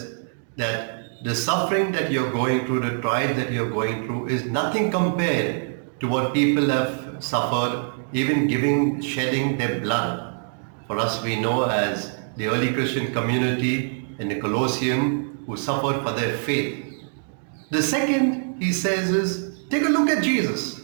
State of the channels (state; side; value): silent; left; digital silence